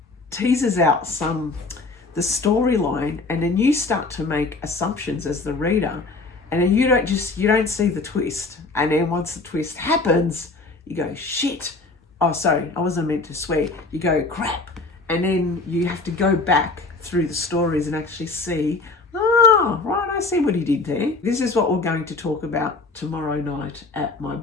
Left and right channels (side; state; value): right; quieter; 3.6 dB